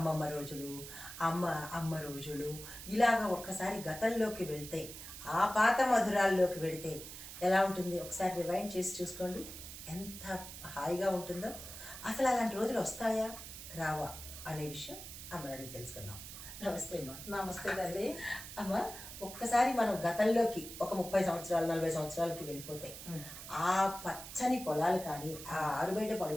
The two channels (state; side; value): noise; right; hiss, 11 dB below the sound